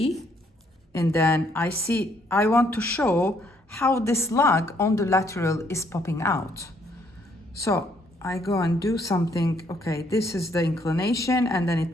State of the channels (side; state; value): both; normal; correlation 0.69